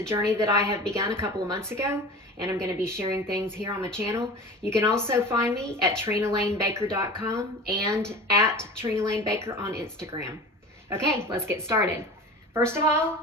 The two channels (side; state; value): both; normal; correlation 0.35